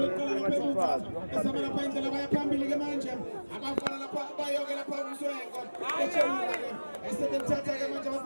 eqala lapha emuva. Esama lapha indlela baya phambili ke manje. Abafana lapha bayoke lapha umswengo. Echela ke. Esethatha ke manje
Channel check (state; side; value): inverted; both; correlation -1.00